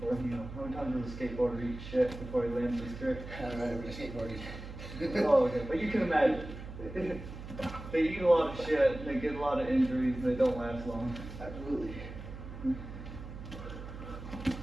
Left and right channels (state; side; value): noise; right; hum, 11 dB below the sound